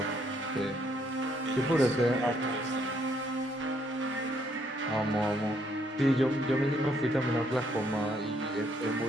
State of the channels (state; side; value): normal; both; correlation 0.70